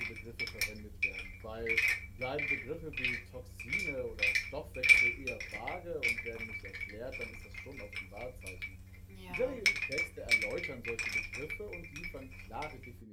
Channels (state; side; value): identical; both; correlation 1.00